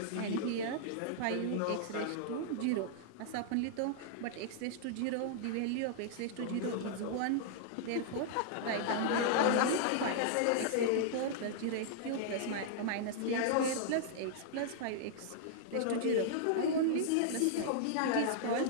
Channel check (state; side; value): different; both; correlation -0.01